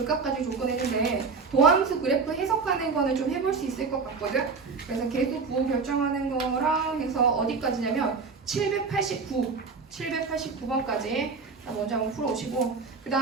가지고 조건했는데 도함수 그래프 해석하는 거는 좀 해볼 수 있을 것 같거든. 그래서 계수 부호 결정하는 거랑 해서 어디까지냐면 789번까지 먼저 한번 풀어오시고 그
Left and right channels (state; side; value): quieter; left; 4.8 dB